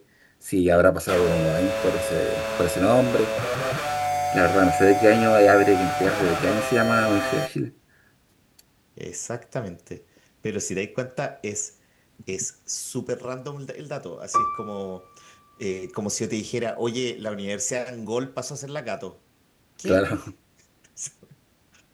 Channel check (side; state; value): both; identical; correlation 1.00